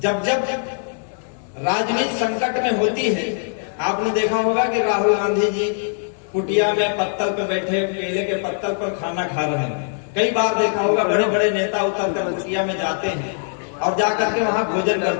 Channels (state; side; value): silent; right; 65 dB below the other